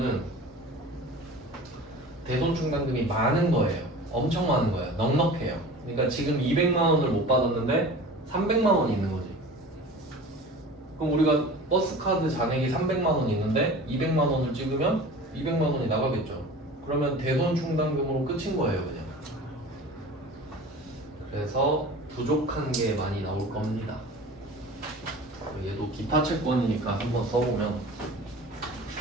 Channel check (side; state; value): both; normal; correlation 0.39